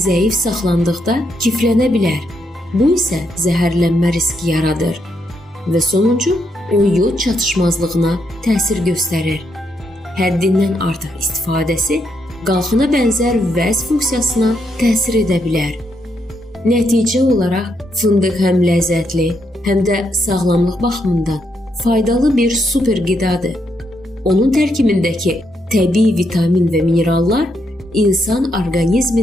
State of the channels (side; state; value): both; normal; correlation 0.78